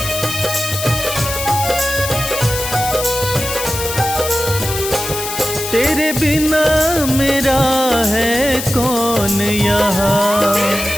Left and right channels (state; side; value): noise; left; hiss, 6 dB below the sound